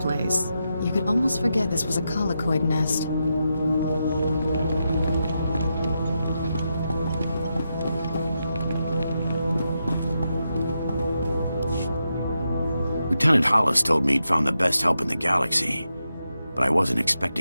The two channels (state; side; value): inverted; both; correlation -0.86